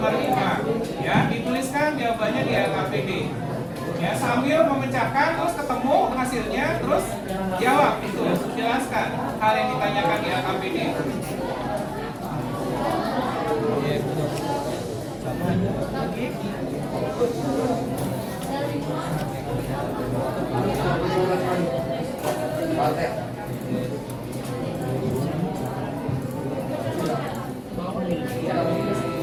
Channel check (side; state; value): both; identical; correlation 1.00